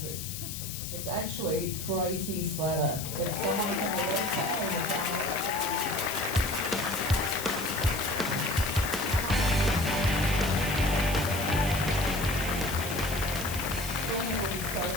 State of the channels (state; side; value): noise; left; hiss, 8 dB below the sound